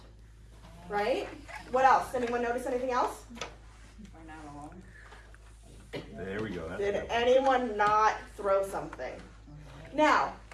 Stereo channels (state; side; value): identical; both; correlation 1.00